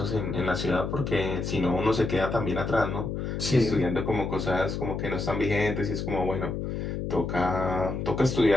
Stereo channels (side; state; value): left; noise; hum, 3 dB below the sound